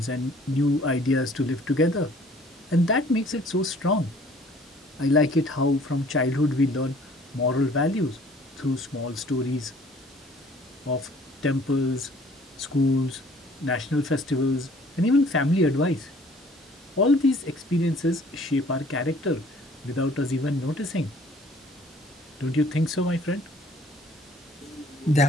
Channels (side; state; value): both; normal; correlation 0.55